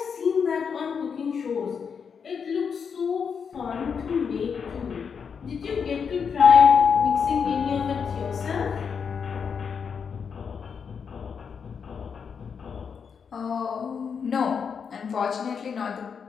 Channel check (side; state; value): right; quieter; 6.4 dB